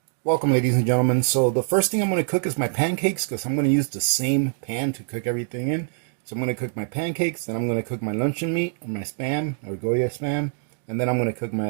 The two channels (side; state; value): left; silent; digital silence